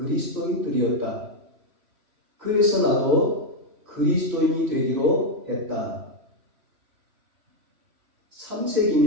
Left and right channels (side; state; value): left; late; 3.1 ms